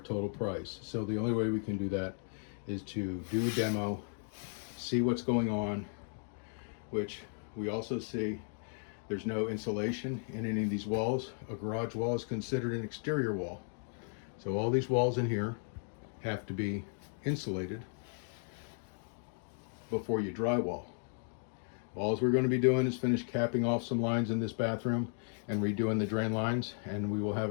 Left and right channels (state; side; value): silent; right; 54 dB below the other